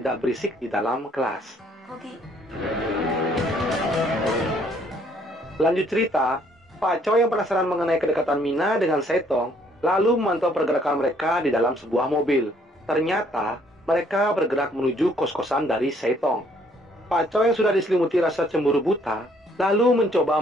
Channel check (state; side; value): normal; both; correlation 0.64